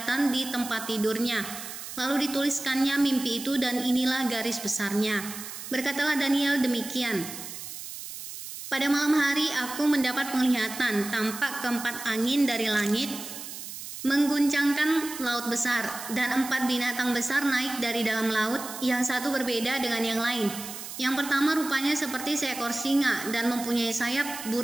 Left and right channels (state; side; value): noise; right; hiss, 10 dB below the sound